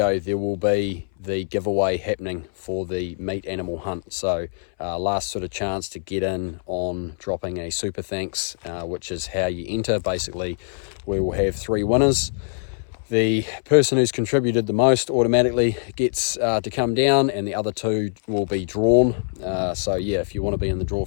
there will be the giveaway happening for the meat animal hunt. So last sort of chance to get in on dropping a super thanks, which is how you enter. Basically we will have 3 winners. The person who's contributed the most automatically gets to come down, and the other 2 will be drawn. So yeah, if you want to be in the draw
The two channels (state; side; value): silent; right; 63 dB below the other